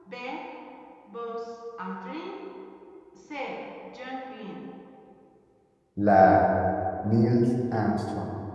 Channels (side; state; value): both; identical; correlation 1.00